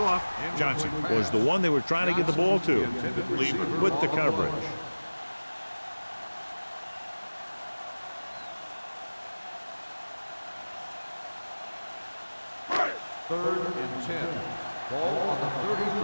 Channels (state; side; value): inverted; both; correlation -1.00